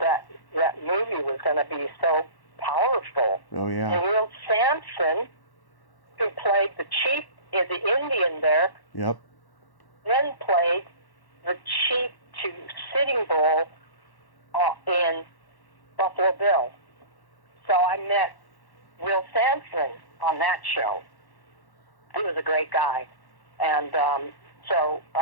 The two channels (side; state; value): right; late; 1.1 ms